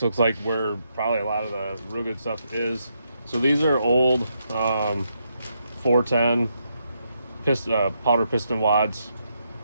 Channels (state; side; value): inverted; both; correlation -0.79